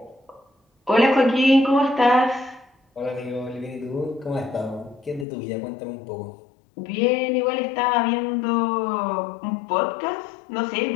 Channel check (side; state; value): right; drops out; at 5.2 s